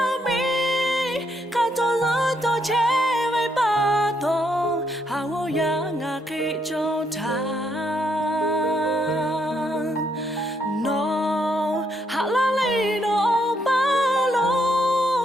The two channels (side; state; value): both; normal; correlation 0.75